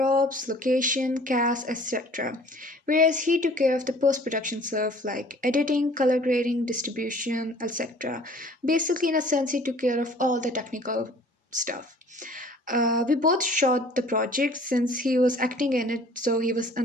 location, cast, etc. Whereas he took care of the post production stuff like editing, color grading, distribution, etc. Basically, in a sense, he took care of all the technical stuff. We both shot the project since he was acting in it, so he was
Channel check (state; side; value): normal; both; correlation 0.51